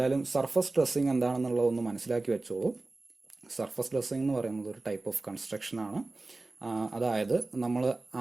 സർഫസ് ഡ്രസ്സിങ് എന്താണെന്നുള്ളതൊന്ന് മനസ്സിലാക്കി വെച്ചോളൂ. സർഫസ് ഡ്രസ്സിങ് എന്ന് പറയുന്നത് ഒരു ടൈപ്പ് ഓഫ് കൺസ്ട്രക്ഷൻ ആണ്. അതായത്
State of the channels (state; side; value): quieter; left; 3.2 dB